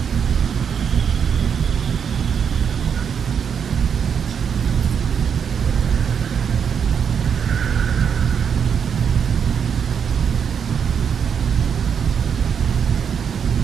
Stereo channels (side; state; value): left; quieter; 7.3 dB